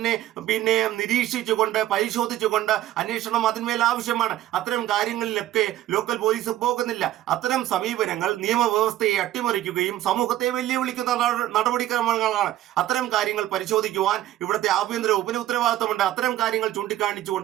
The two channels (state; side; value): quieter; left; 13.7 dB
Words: നിരീക്ഷിച്ചുകൊണ്ട് പരിശോധിച്ചുകൊണ്ട് അന്വേഷണം അതിന്മേൽ ആവശ്യമാണ്. അത്തരം കാര്യങ്ങളിലൊക്കെ ലോക്കൽ പോലീസ് പോകുന്നില്ല. അത്തരം സമീപനങ്ങൾ നിയമവ്യവസ്ഥയെ അട്ടിമറിക്കുകയും സമൂഹത്തെ വെല്ലുവിളിക്കുന്ന നടപടിക്രമങ്ങളാണ്. അത്തരം കാര്യങ്ങൾ പരിശോധിക്കുവാൻ ഇവിടുത്തെ ആഭ്യന്തര വകുപ്പിന് ഉത്തരവാദിത്തമുണ്ട്. അത്തരം കാര്യങ്ങൾ